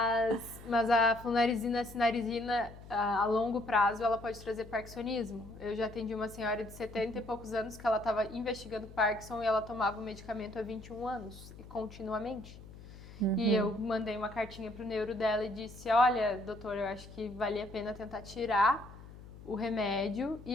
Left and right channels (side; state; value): left; noise; hum, 17 dB below the sound